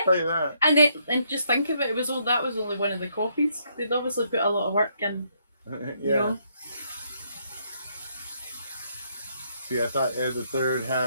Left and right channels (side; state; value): both; inverted; correlation -0.73